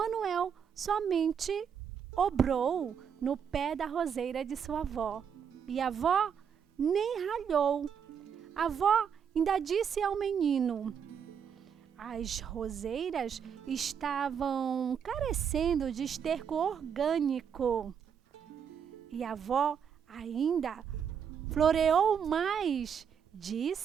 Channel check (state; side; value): quieter; left; 7.5 dB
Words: somente obrou no pé da roseira de sua avó. E a avó nem ralhou. A avó ainda disse ao menino: as roseiras estavam carecendo de esterco orgânico. E a avó ainda floreou mais.